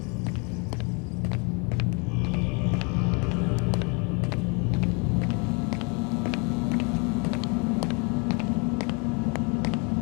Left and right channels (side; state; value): right; quieter; 33.3 dB